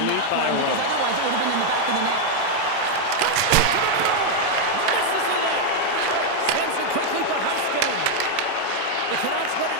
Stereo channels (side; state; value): both; different; correlation 0.00